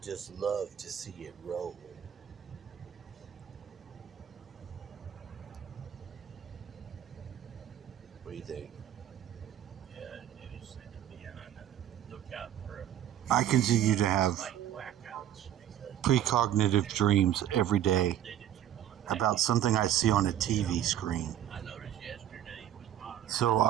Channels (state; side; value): quieter; left; 11.0 dB